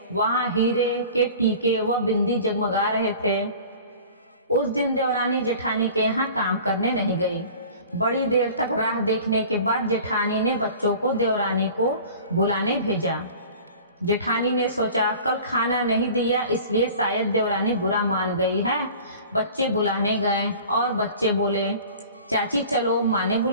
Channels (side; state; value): both; inverted; correlation -0.43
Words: वहाँ हीरे के टीके व बिंदी जगमगा रहे थे। उस दिन देवरानी जेठानी के यहाँ काम करने नहीं गई। बड़ी देर तक राह देखने के बाद जेठानी ने बच्चों को देवरानी को बुलाने भेजा। जेठानी ने सोचा कल खाना नहीं दिया इसलिए शायद देवरानी बुरा मान गई है। बच्चे बुलाने गए और बच्चे बोले, चाची चलो, माँ ने